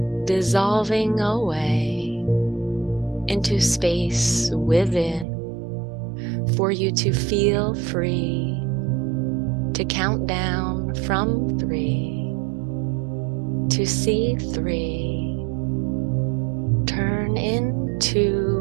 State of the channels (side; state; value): left; drops out; at 5.2 s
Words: dissolving away into space within, for you to feel free to count down from 3, to see 3 turn